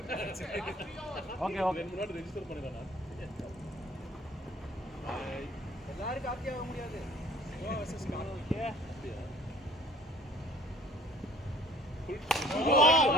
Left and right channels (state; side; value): normal; both; correlation 0.52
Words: Okay okay. முன்னாடி ரெஜிஸ்டர் பண்ணிடலாம் எல்லாரும் காப்பி ஆக முடியாது.